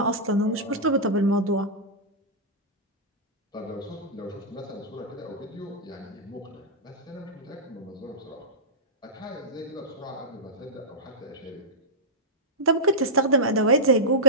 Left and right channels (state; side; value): normal; both; correlation -0.12